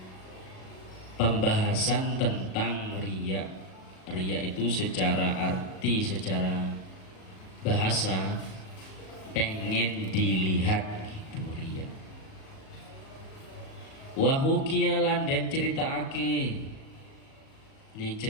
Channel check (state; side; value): late; right; 37 ms